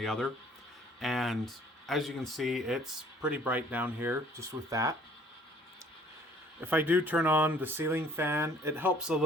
other. And as you can see, it's pretty bright down here just with that. If I do turn on the ceiling fan, it helps a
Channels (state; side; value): normal; both; correlation 0.57